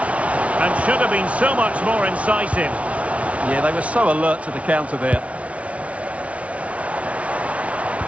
And should have been so much more incisive. Yeah, they were so alert to the counter there.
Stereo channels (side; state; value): left; late; 0.064 ms